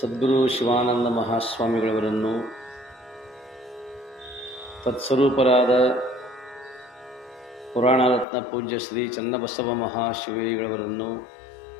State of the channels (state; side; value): drops out; right; at 8.2 s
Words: ಶಿವಾನಂದ ಮಹಾಸ್ವಾಮಿಗಳವರನ್ನು, ತತ್ಸ್ವರೂಪರಾದ ಪುರಾಣರತ್ನ ಪೂಜ್ಯ ಶ್ರೀ ಚನ್ನಬಸವ ಮಹಾಶಿವೈಗಳವರನ್ನು,